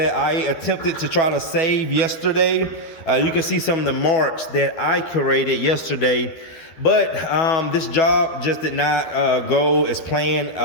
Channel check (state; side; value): late; right; 12 ms